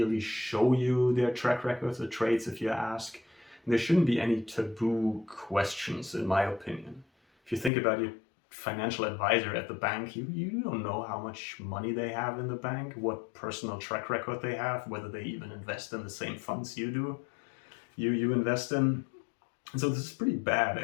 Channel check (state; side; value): drops out; right; at 7.7 s